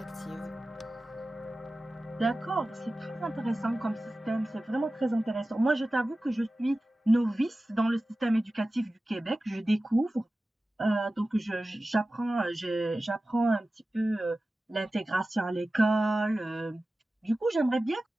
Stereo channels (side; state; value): both; normal; correlation 0.95